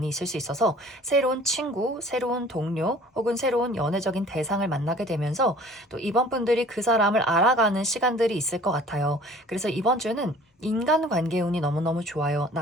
있을 수 있어서 새로운 친구, 새로운 동료 혹은 새로운 연애적인 대상을 만나게 되면서 또 이번 분들이 그 사람을 알아가는 시간들이 있을 것 같아요. 그래서 이번 주는 인간관계 운이 너무너무 좋아요.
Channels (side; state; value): both; normal; correlation 0.49